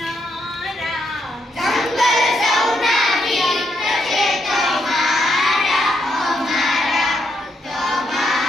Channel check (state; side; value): normal; both; correlation 0.78